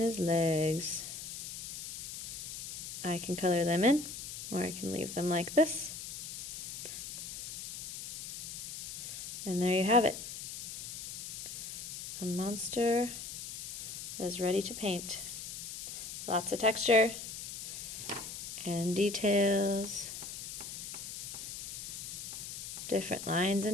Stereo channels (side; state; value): left; noise; hiss, 8 dB below the sound